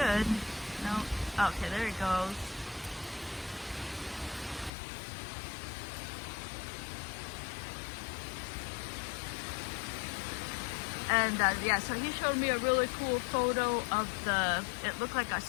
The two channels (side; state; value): right; drops out; at 4.7 s